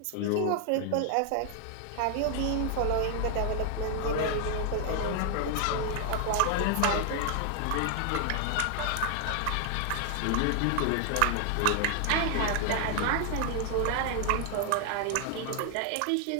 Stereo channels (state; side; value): different; both; correlation 0.00